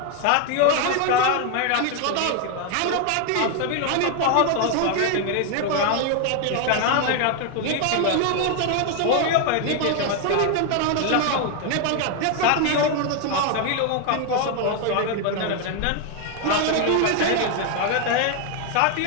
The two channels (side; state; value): both; different; correlation 0.01